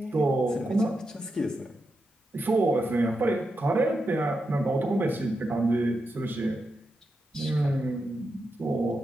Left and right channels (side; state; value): both; normal; correlation 0.87